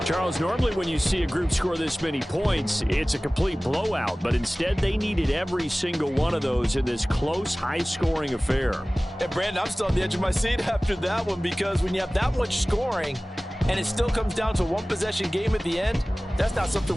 Charles, normally when you see a group score this many points, it's a complete blowout. But instead, they needed every single one of those in this close, high-scoring affair. And, Brandon, I'm still on the edge of my seat after that one because when you have that much scoring and it still comes down to a one-possession game at the end, that's not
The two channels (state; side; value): normal; both; correlation 0.98